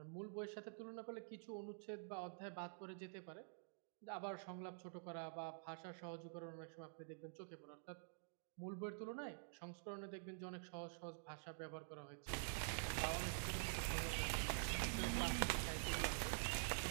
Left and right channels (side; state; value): left; silent; digital silence